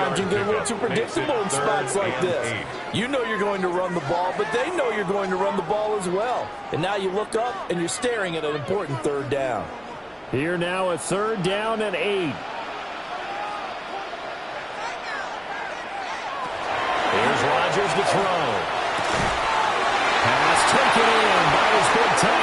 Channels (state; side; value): identical; both; correlation 1.00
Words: you can get a little too predictable in spots like this. You know you're going to run the ball, but they know you're going to run the ball as well. And now you look up and you're staring at an important third down. Here now a third down and 8. Here's Rodgers to throw. Pass taken in by his big